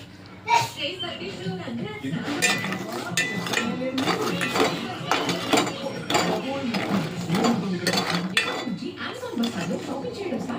అమెజాన్ బస్సాలో షాపింగ్ చేయడం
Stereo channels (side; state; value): both; identical; correlation 1.00